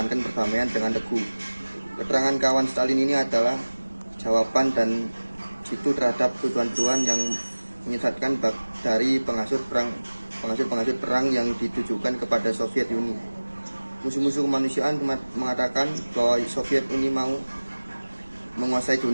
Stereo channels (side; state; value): both; inverted; correlation -1.00